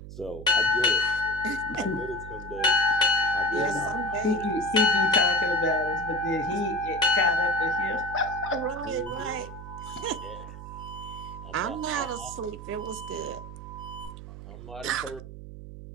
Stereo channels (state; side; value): noise; right; hum, 13 dB below the sound